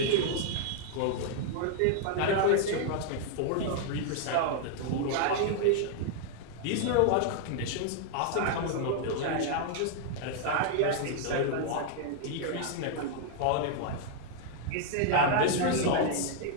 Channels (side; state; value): both; different; correlation 0.00